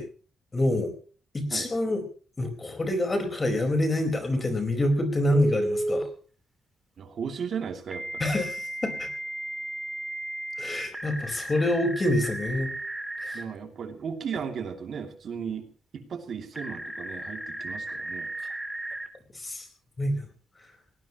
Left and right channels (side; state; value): both; normal; correlation 0.84